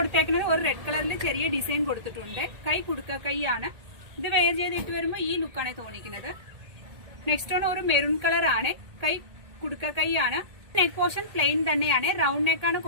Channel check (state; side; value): late; left; 1.8 ms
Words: ഒരു റെഡ് കളറിൽ ചെറിയ ഡിസൈൻ കൊടുത്തിട്ടുണ്ട്. കൈ കുടുക്ക കൈയാണ്. ഇത് വെയർ ചെയ്തിട്ട് വരുമ്പോൾ ഈ ലുക്കാണ് തോന്നിക്കുന്നത്. നെക്സ്റ്റ് വൺ ഒരു മെറൂൺ കളർ ആണ്. കൈ കുടുക്ക കൈയാണ്. നെക്ക് പോർഷൻ പ്ലെയിൻ തന്നെയാണ്. റൗണ്ട് നെക്കാണ്